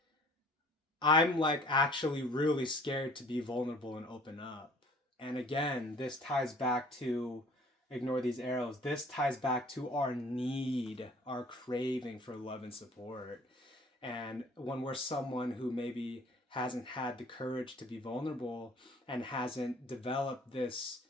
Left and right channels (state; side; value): normal; both; correlation 0.52